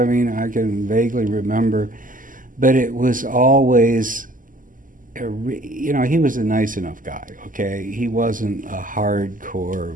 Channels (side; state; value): left; late; 0.39 ms